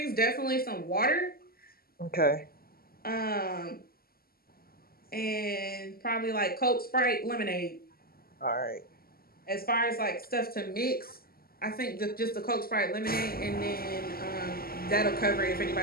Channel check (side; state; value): right; late; 0.43 ms